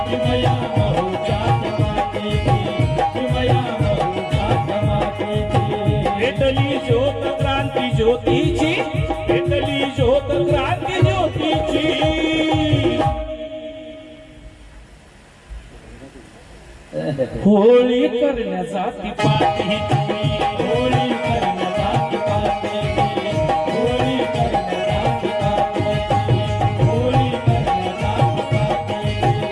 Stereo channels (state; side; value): identical; both; correlation 1.00